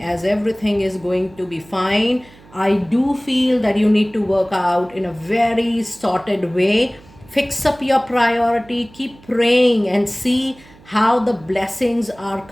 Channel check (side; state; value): right; noise; hum, 25 dB below the sound